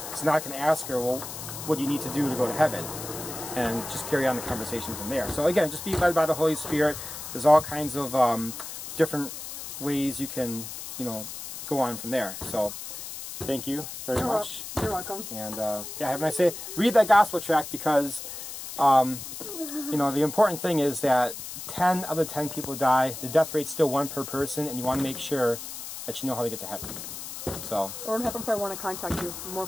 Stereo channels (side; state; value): left; noise; hiss, 9 dB below the sound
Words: So now I can ask her, well, what do you need to do to go to heaven? And just carry on the conversation from there. So again, just be led by the Holy Spirit. There's all kinds of different ways you can, you know, go on from there. So thank you very much. You're welcome. And yeah, have a nice day. Read that gospel tract, because you know, the important thing is that 10 out of 10 people die. The death rate's still 1 per person, and you want to make sure that you know how to get to heaven. So what happens if I want to contact you? More